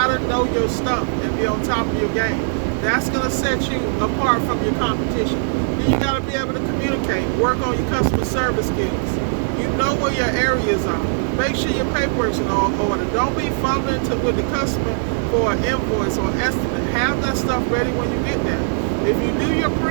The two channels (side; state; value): left; silent; digital silence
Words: know your stuff and be on top of your game. That's gonna set you apart from your competition. And you gotta be able to communicate, work on your customer service skills. You know where your areas are. Make sure your paperwork's in order. Don't be fumbling with the customer for an invoice or estimate. Have that stuff ready when you get there. If you do your